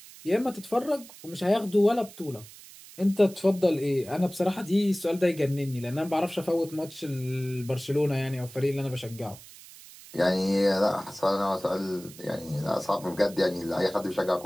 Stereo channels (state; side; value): noise; right; hiss, 19 dB below the sound